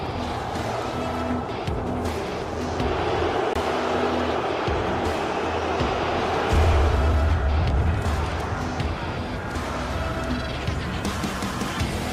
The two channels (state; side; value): identical; both; correlation 1.00